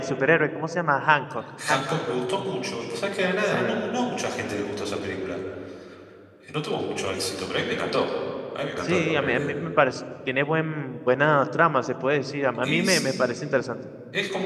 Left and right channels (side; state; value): both; identical; correlation 1.00